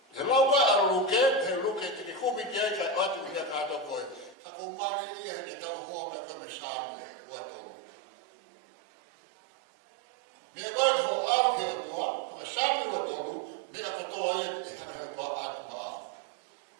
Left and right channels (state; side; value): drops out; left; at 4.4 s